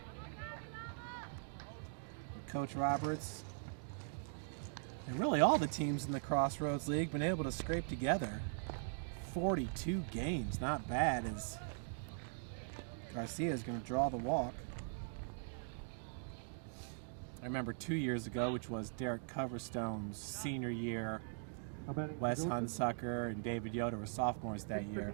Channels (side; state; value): left; silent; digital silence